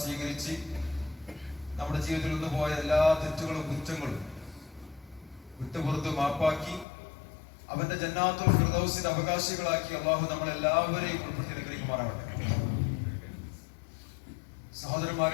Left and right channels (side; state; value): right; drops out; at 6.9 s